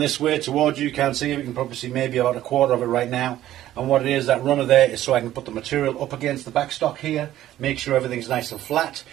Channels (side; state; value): left; quieter; 13.3 dB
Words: way towards you. You can't see it. You can probably see maybe about a quarter of it right now. And what it is, that runner there is so I can put the material up against the backstock here, make sure everything's nice and flat.